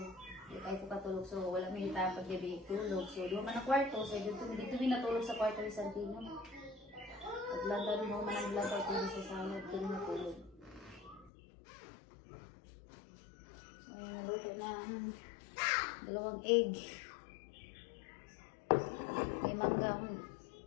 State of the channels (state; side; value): drops out; right; at 11.3 s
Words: Hindi kayo po katulog so wala minitapad gabi tulog. So doon man ang kwarto, so dito min natulog sa kwarto ni Santino. At landa rin mo man ang landa ko sa salad, doon natulog. So naluto na dalawang egg. May mangga.